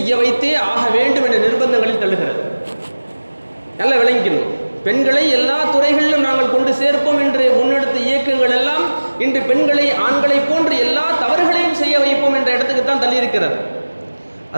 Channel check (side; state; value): both; inverted; correlation -1.00